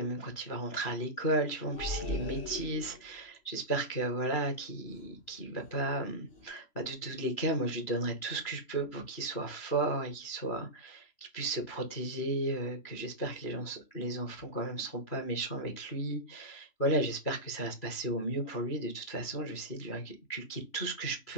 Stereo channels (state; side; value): late; right; 3.0 ms